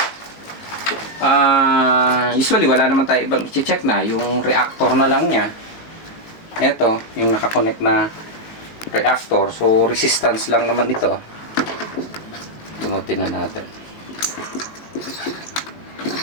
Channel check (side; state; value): right; late; 19 ms